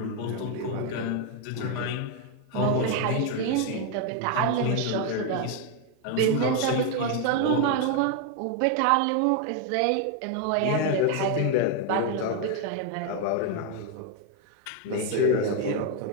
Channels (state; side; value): different; both; correlation 0.01